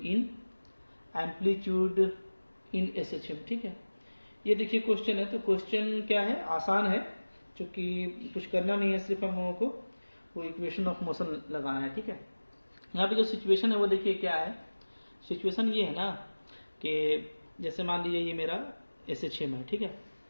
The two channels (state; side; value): inverted; both; correlation -1.00